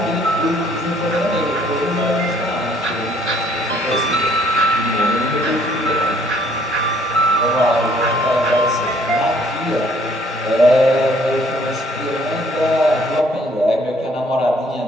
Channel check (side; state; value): both; normal; correlation 0.62